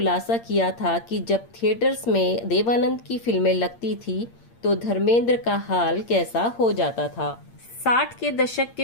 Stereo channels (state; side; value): late; right; 8.7 ms